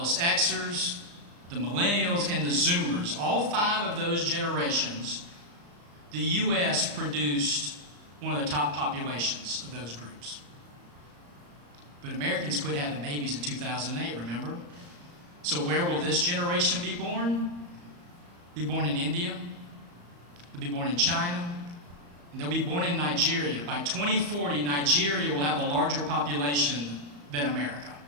Xers, the millennials, and the Zoomers, all 5 of those generations, the U.S. produced one of the top populations of those groups. But Americans quit having babies in 2008, remember? So where will this generation be born? Be born in India. They'll be born in China. And they'll be born in Nigeria. By 2040, Nigeria will have a larger population than America.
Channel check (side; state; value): left; late; 34 ms